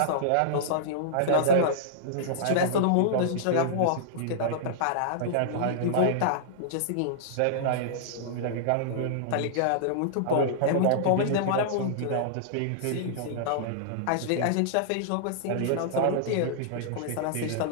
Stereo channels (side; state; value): both; different; correlation -0.02